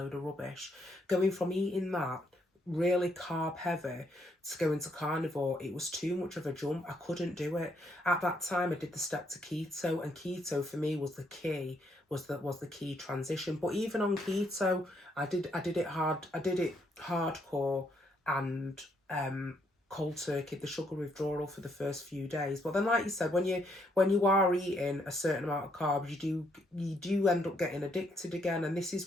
of rubbish. Going from eating that really carb heavy to go into carnivore, it was too much of a jump. I couldn't do it. At that time I did the step to keto, and keto for me was the key, was the key transition. But even on keto, I did it hardcore and cold turkey, the sugar withdrawal for the first few days. But then, like you said, when you are eating a certain amount of carbs, you do end up getting addicted again. And this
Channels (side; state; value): both; normal; correlation 0.73